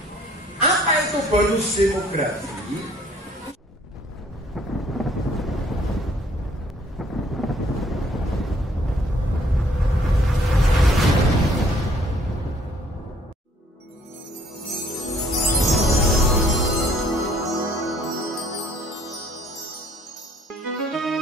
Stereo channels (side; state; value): both; normal; correlation 0.61